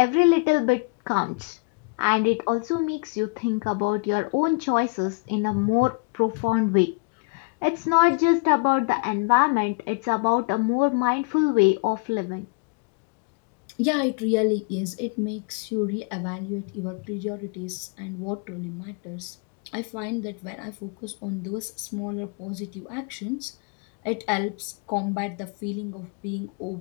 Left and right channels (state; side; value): quieter; right; 31.1 dB